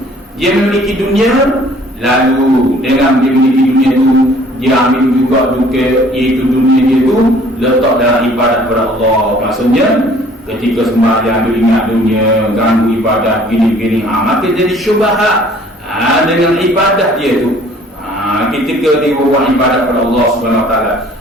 Dia memiliki dunia, lalu dengan dia memiliki dunia itu, dia ambil juga iaitu dunia dia itu letak dalam ibadat kepada Allah. Maksudnya ketika sembahyang dia ingat dunia, ganggu ibadah gini-gini, maka jadi syubhat dengan ibadah dia tu. Ketika dia buat ibadat kepada Allah Subhanahu Wa Taala,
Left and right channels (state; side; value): normal; both; correlation 0.55